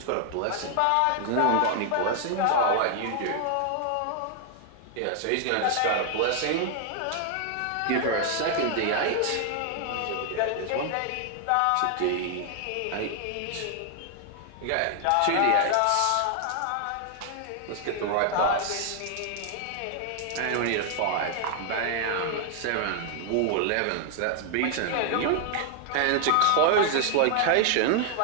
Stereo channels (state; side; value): different; both; correlation 0.00